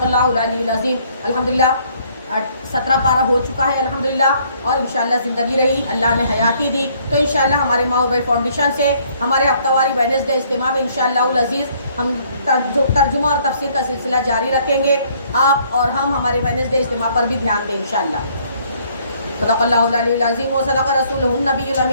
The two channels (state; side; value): inverted; both; correlation -0.63